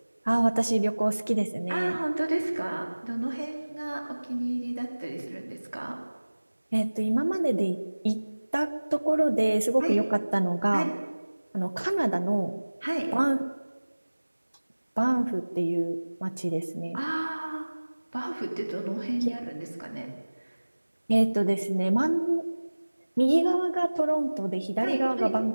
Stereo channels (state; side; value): inverted; both; correlation -1.00